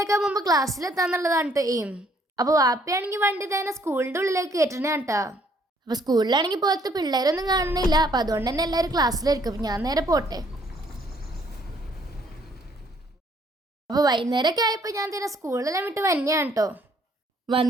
മുമ്പ് ക്ലാസ്സിലെത്താന്നുള്ളതാണ് കേട്ടോ എയിം. അപ്പോൾ വാപ്പയാണെങ്കിൽ വണ്ടി തന്നെ സ്കൂളിൻ്റെ ഉള്ളിലേക്ക് കയറ്റണേ കേട്ടോ. അപ്പോൾ സ്കൂളിലാണെങ്കിൽ പുറത്ത് പിള്ളേരൊന്നും കാണുന്നില്ല. അപ്പോൾ അതുകൊണ്ട് തന്നെ എല്ലാവരും ക്ലാസ്സിലായിരിക്കും. അപ്പോൾ ഞാൻ നേരെ പോട്ടെ. അപ്പോൾ വൈകുന്നേരമൊക്കെ ആയപ്പോൾ ഞാൻ തന്നെ സ്കൂളിലെല്ലാം വിട്ട് വന്നെയാണ് കേട്ടോ.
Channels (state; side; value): normal; both; correlation 0.64